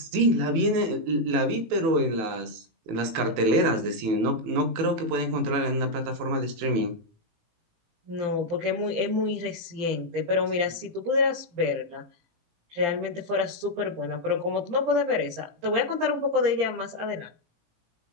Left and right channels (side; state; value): left; late; 18 ms